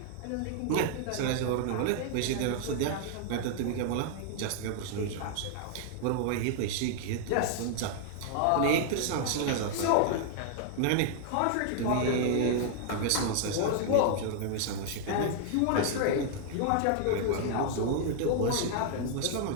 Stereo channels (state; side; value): different; both; correlation 0.00